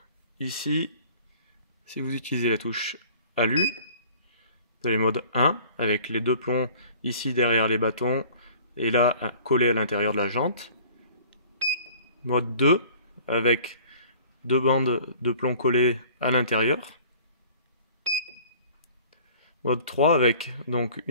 ici, si vous utilisez la touche alu, vous avez mode 1, avec les deux plombs ici derrière les bâtons, et là, collés à l'intérieur de la jante. Mode 2, avec deux bandes de plomb collées à l'intérieur. Mode 3 avec donc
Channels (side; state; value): both; inverted; correlation -0.49